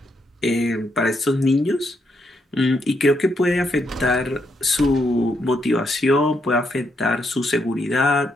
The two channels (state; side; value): normal; both; correlation 0.78